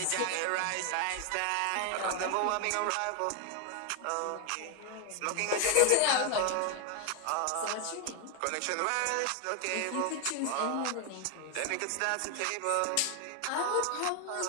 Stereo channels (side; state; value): both; different; correlation 0.01